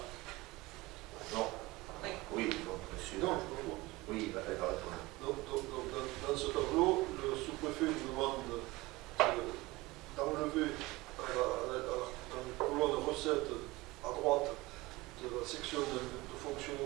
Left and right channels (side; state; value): left; quieter; 21.1 dB